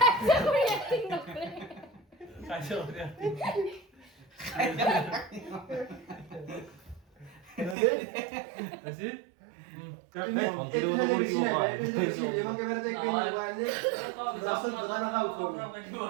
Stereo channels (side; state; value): left; drops out; at 7.8 s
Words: এক্টিং নকৰে কাজিয়া কৰি acting। ৰেডি আজি এবং এবাৰে যে কেন মোবাইলে ৰাসন দাদা না উঠো